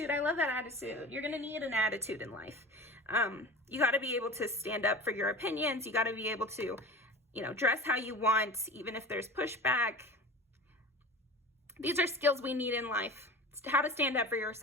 I love that attitude. You're going to need an attitude in life. You got to be able to stand up for your opinions. You got to be able to, you know, dress how you want, even if there's pushback. These are skills we need in life. It's how to stand up for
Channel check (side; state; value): both; normal; correlation 0.35